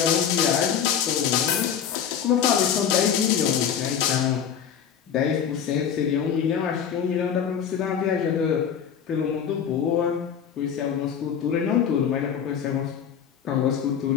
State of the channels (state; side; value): quieter; right; 8.1 dB